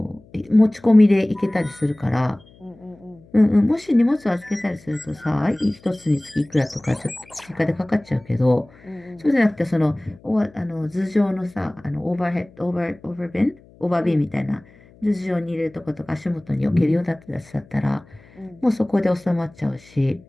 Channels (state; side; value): noise; left; hum, 26 dB below the sound